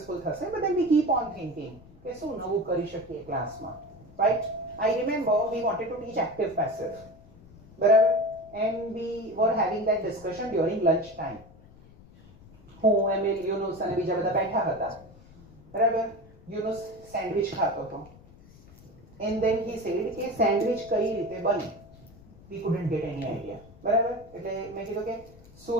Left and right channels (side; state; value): left; noise; rumble, 23 dB below the sound